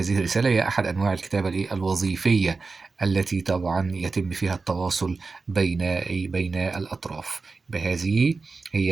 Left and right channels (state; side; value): quieter; left; 4.2 dB